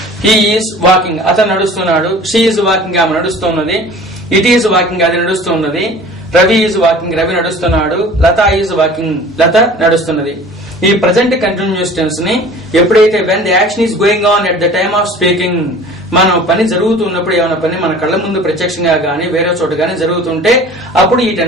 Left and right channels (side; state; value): both; normal; correlation 0.44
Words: ఈజ్ వాకింగ్, అతను నడుస్తున్నాడు. షీ ఈజ్ వాకింగ్, ఆమె నడుస్తున్నది. ఇట్ ఈజ్ వాకింగ్, అది నడుస్తున్నది. రవి ఈజ్ వాకింగ్, రవి నడుస్తున్నాడు. లత ఈజ్ వాకింగ్, లత నడుస్తున్నది. ఈ ప్రజెంట్ కంటిన్యూస్ టెన్స్ ని ఎప్పుడైతే when the action is going on at the time of speaking, మనం పని జరుగుతున్నప్పుడు, ఏమైనా పని మన కళ్ళ ముందు ప్రత్యక్షంగా గానీ వేరే చోట గానీ జరుగుతుంటే అప్పుడు ఈ